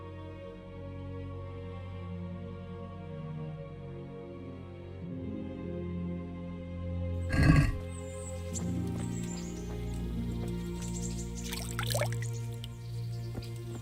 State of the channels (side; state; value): both; identical; correlation 1.00